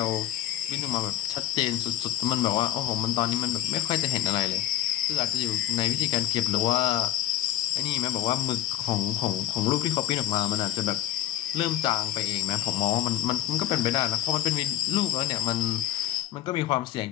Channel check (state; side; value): quieter; right; 12.9 dB